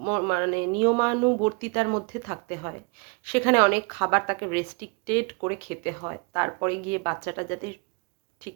নিয়মানুবর্তিতার মধ্যে থাকতে হয়। সেখানে অনেক খাবার তাকে রেস্ট্রিক্টেড করে খেতে হয়, তারপরে গিয়ে বাচ্চাটা যাতে ঠিক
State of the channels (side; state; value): left; quieter; 31.9 dB